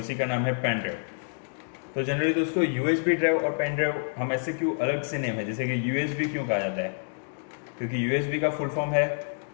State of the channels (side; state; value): right; silent; digital silence